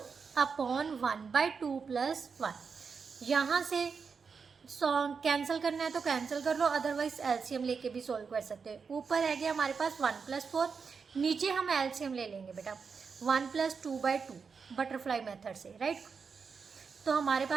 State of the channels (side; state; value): left; quieter; 5.6 dB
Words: अपॉन 1/2 प्लस 1। यहाँ से कैंसिल करना है तो कैंसिल कर लो, अदरवाइज एलसीएम लेके भी सोल्व कर सकते हैं। ऊपर है गया हमारे पास 1 प्लस 4, नीचे हम एलसीएम ले लेंगे बेटा 1 प्लस 2/2 बटरफ्लाई मेथड से, राइट। तो हमारे